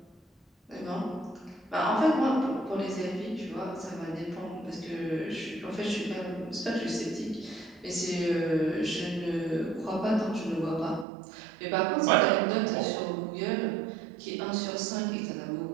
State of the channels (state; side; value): drops out; left; at 11.1 s